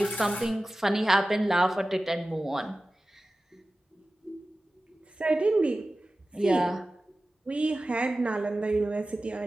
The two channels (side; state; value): both; normal; correlation 0.95